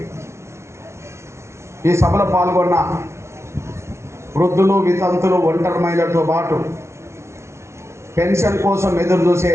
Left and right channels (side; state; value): left; late; 0.13 ms